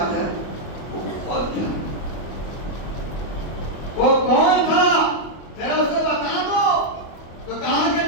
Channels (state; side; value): late; right; 25 ms